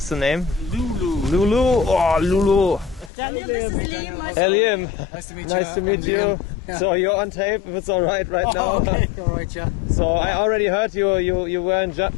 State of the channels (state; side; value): drops out; right; at 3.1 s